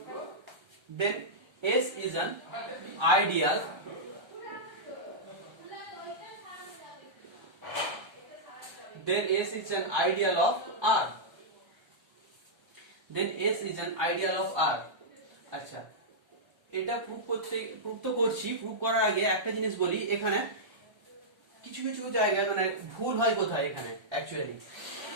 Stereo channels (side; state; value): left; late; 1.3 ms